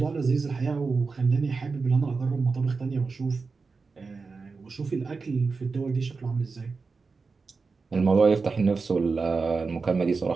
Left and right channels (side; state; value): left; quieter; 4.5 dB